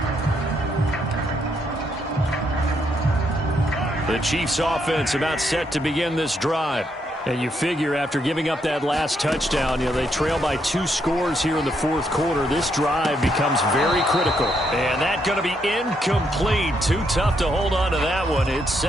The Chiefs offense about set to begin this drive. And you figure after giving up that last touchdown, they trail by 2 scores here in the fourth quarter. This drive becomes very critical. And that's going to be incomplete. Too tough to hold on to that one. It's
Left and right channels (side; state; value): both; normal; correlation 0.76